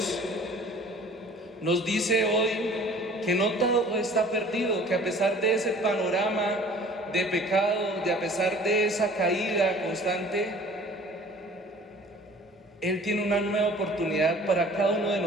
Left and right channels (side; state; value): both; normal; correlation 0.49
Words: nos dice hoy que no todo está perdido, que a pesar de ese panorama de pecado, a pesar de esa caída constante, Él tiene una nueva oportunidad para cada uno de